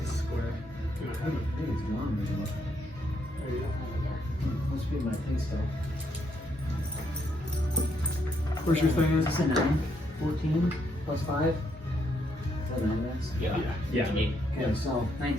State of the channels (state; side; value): normal; both; correlation 0.75